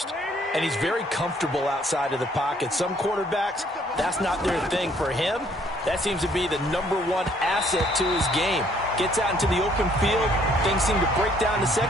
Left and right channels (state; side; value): normal; both; correlation 0.64